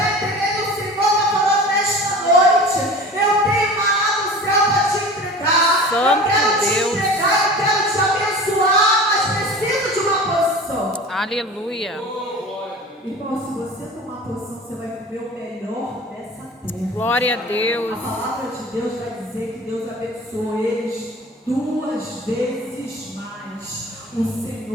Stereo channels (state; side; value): normal; both; correlation 0.38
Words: entendendo? O Senhor está falando nesta noite: eu tenho maná do céu para te entregar. Santo eu quero Deus. te entregar, eu quero te abençoar, mas preciso de uma posição. Aleluia. Irmão, se você tomar posição, você vai viver o melhor dessa terra. Glória a Deus. A palavra de Deus vai dizer que Deus abençoou eles 2 vezes mais. O